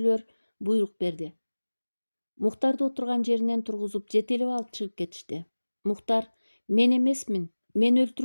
буйрук берди. Мухтарды отурган жеринен тургузуп жетелеп алып чыгып кетишти. Мухтар, мен эмесмин, мен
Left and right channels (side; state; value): both; inverted; correlation -1.00